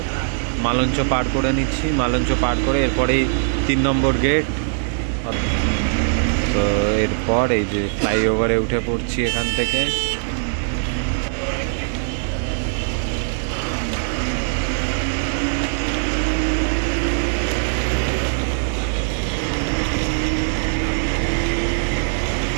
মালঞ্চ পার করে নিচ্ছি। মালঞ্চ পার করে এরপরেই 3 নম্বর গেট। তো এরপর এই যে ফ্লাইওভারে উঠে পড়ছি এখান থেকে।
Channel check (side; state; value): left; silent; 65 dB below the other